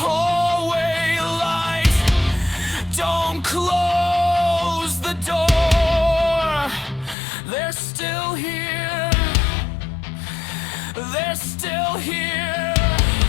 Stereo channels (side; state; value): right; drops out; at 7.2 s